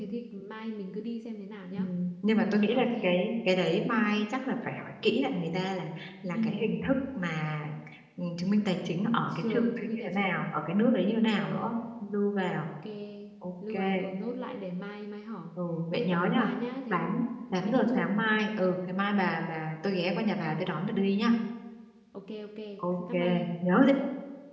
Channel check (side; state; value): both; identical; correlation 1.00